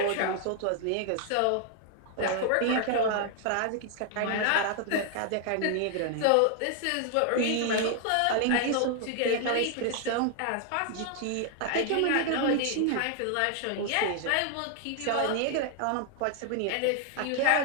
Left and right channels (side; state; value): both; different; correlation 0.00